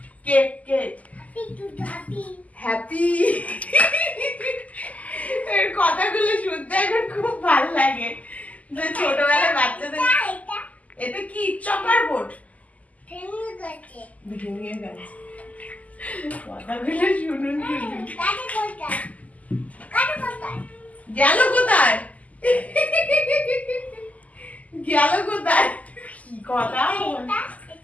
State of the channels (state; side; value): late; right; 0.073 ms